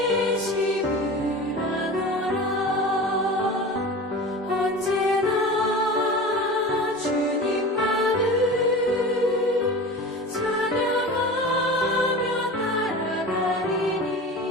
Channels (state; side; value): normal; both; correlation 0.33